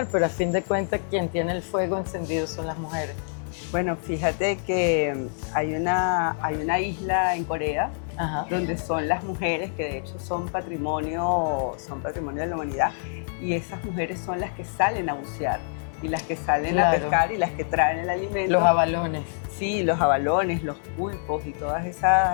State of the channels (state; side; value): silent; right; digital silence